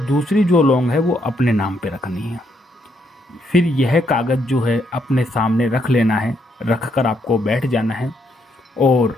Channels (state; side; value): normal; both; correlation 0.75